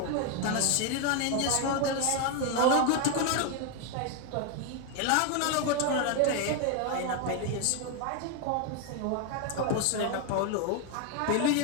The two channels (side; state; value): both; different; correlation 0.01